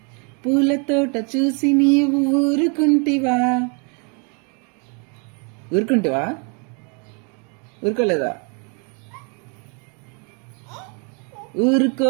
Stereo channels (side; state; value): left; quieter; 36.2 dB